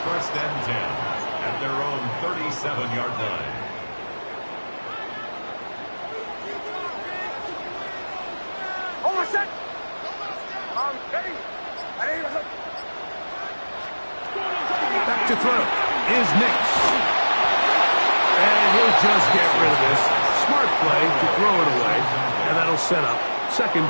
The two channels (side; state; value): both; inverted; correlation -1.00